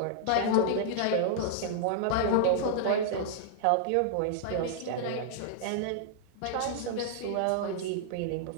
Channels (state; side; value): different; both; correlation -0.01